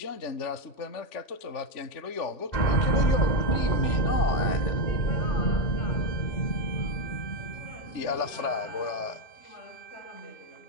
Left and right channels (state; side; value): late; right; 3.4 ms